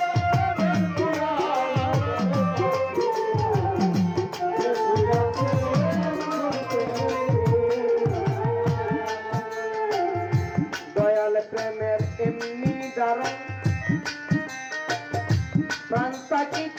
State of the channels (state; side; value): identical; both; correlation 1.00